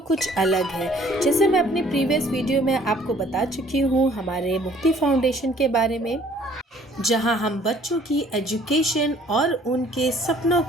कुछ अलग है। जैसे मैं अपने प्रीवियस वीडियो में आपको बता चुकी हूँ हमारे मुक्ति फाउंडेशन के बारे में, जहाँ हम बच्चों की एजुकेशन और उनके सपनों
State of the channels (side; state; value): both; normal; correlation 0.57